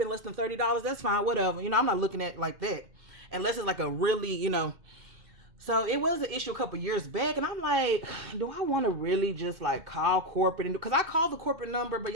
less than $30. That's fine, whatever. I'm not looking at it like that. Unless it's like a really, So it was an issue a couple years back. And I'm like, do I want to really just like call corporate? Because I called the corporate number, but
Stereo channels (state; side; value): late; left; 2.5 ms